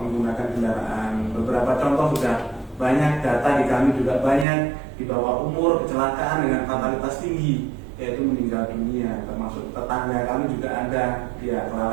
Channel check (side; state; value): left; drops out; at 4.5 s